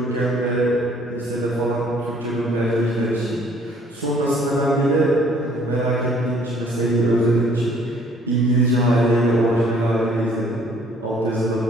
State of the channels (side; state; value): both; normal; correlation 0.59